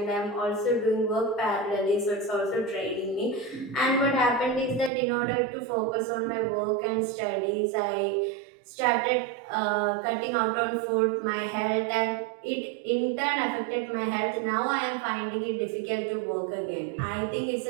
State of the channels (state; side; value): drops out; left; at 4.9 s